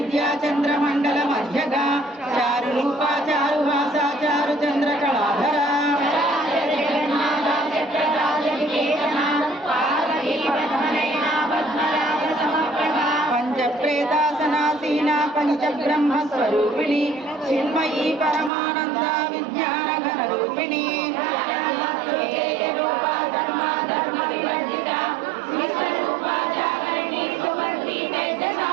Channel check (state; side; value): drops out; left; at 18.5 s